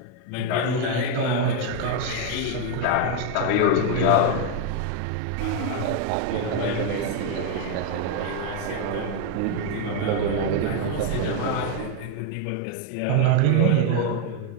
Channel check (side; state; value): both; different; correlation 0.01